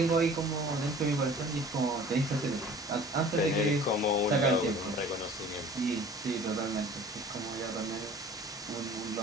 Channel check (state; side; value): normal; both; correlation 0.46